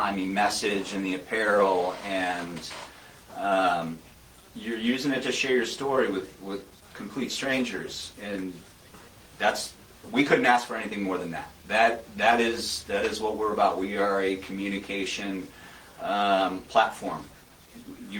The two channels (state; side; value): identical; both; correlation 1.00